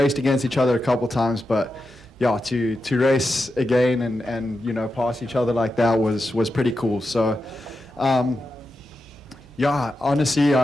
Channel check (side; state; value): both; normal; correlation 0.89